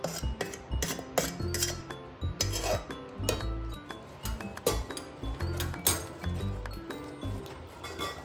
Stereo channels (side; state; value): both; identical; correlation 1.00